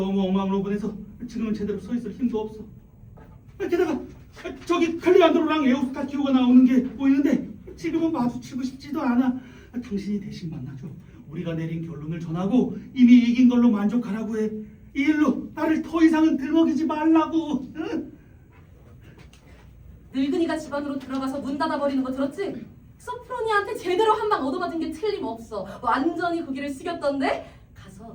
엉망으로 보내서 지금은 제대로 서 있을 힘도 없어. 게다가 저기 클레안드로랑 에우스타키오가 나오는 게 보이는데 지금은 마주치고 싶지도 않아. 당신이 대신 만나줘. 우리가 내린 결론을 전하고 이미 이긴 걸로 만족하라고 해. 이 일로 나를 더 이상은 들먹이지 말라고. 응? 늙은이가 집 안으로 들어가서 문 닫아버리는 거 들었지? 소프로니아한테 제대로 한 방 얻어맞은 게 틀림없어. 완전히 고개를 숙였던데?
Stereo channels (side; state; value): both; identical; correlation 1.00